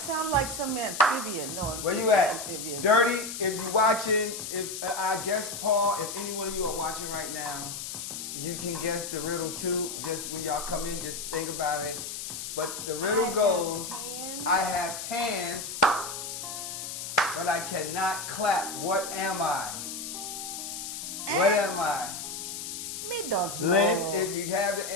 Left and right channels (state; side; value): noise; left; hiss, 6 dB below the sound